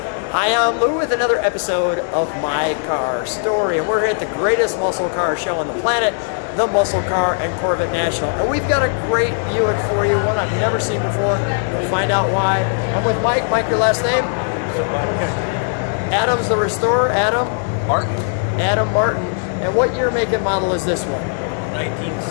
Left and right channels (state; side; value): silent; right; digital silence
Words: Hi, I'm Lou with another episode of My Car Story, and we're here at the greatest muscle car show on the planet, the Muscle Car and Corvette National. And we've got a great Buick for you, one I've never seen before. You'll find out why. I'm with Mike. Mike, your last name? Sobotka. Adam's the restorer. Adam? Martin. Adam Martin. And what year, make, and model is this one?